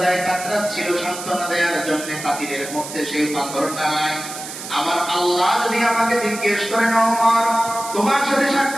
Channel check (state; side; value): noise; right; hiss, 10 dB below the sound